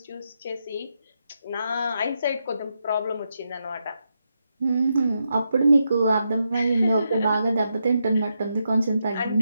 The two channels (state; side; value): inverted; both; correlation -0.84